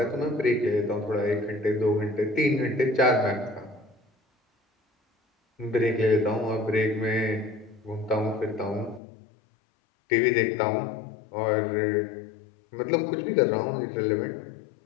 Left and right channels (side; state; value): right; drops out; at 9.0 s